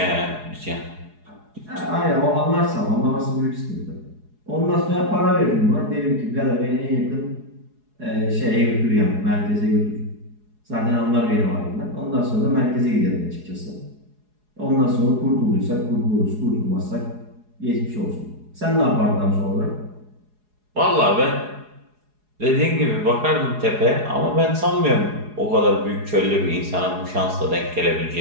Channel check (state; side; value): late; left; 4.8 ms